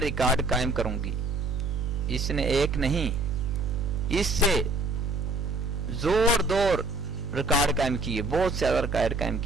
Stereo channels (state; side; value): noise; right; hum, 3 dB below the sound